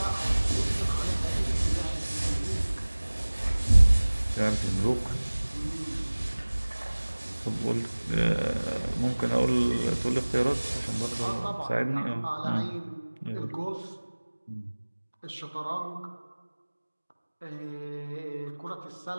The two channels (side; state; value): both; inverted; correlation -1.00